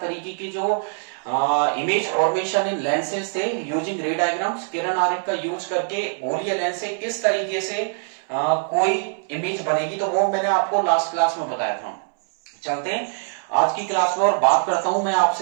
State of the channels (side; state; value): left; silent; 63 dB below the other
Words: की जो इमेज फॉर्मेशन इन लेंसेज थे यूजिंग रे डायग्राम्स, किरण आरेख का यूज करके गोलीय लेंस से किस तरीके से कोई इमेज बनेगी, तो वो मैंने आपको लास्ट क्लास में बताया था। चलते हैं आज की क्लास में और बात करता हूं, मैं